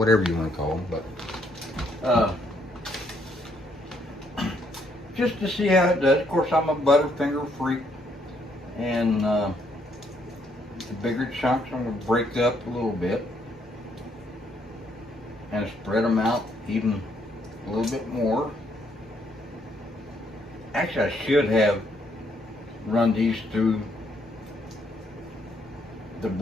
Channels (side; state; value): both; normal; correlation 0.71